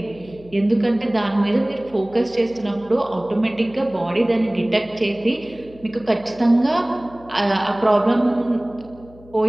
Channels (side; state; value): left; noise; hum, 23 dB below the sound